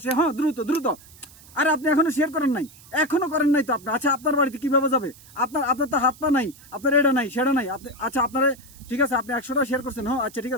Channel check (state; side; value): noise; right; hiss, 22 dB below the sound